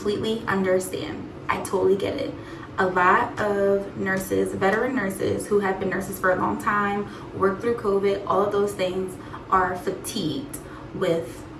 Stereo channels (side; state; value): both; identical; correlation 1.00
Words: understand. I totally get it. A lot of nurses, veteran nurses who have been nurses for a long time, worked through COVID, all of those things, are fatigued with